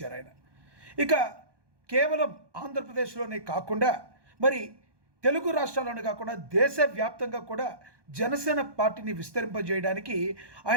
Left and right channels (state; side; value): late; left; 1.2 ms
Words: ఆయన. ఇక కేవలం ఆంధ్రప్రదేశ్లోనే కాకుండా మరి తెలుగు రాష్ట్రాల్లోనే కాకుండా దేశవ్యాప్తంగా కూడా జనసేన పార్టీని విస్తరింపజేయడానికి